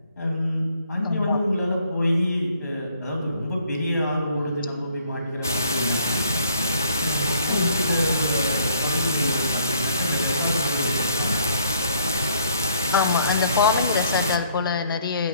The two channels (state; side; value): inverted; both; correlation -0.63